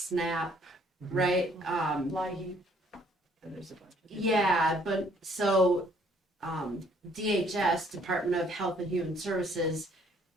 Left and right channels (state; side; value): normal; both; correlation 0.63